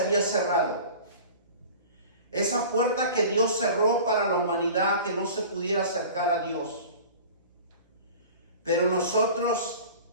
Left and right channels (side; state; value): both; inverted; correlation -0.40